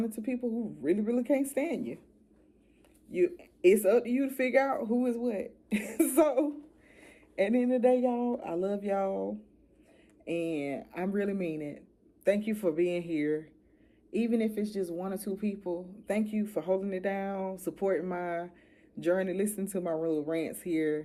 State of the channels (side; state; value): both; identical; correlation 1.00